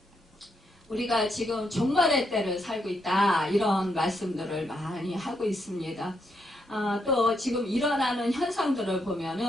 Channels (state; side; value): normal; both; correlation 0.79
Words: 우리가 지금 종말의 때를 살고 있다, 이런 말씀들을 많이 하고 있습니다. 또 지금 일어나는 현상들을